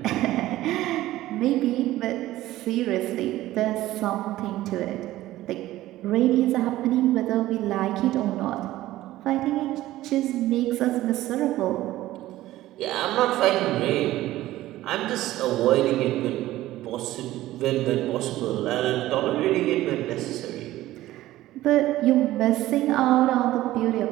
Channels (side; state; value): left; quieter; 15.6 dB